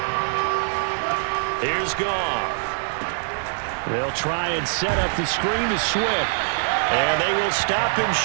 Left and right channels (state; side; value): silent; left; digital silence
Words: Here's Goff. They'll try and set up the screen to Swift. And they will stop him